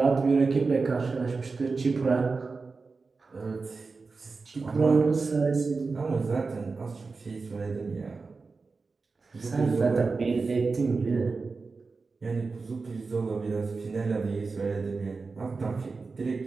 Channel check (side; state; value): left; quieter; 4.3 dB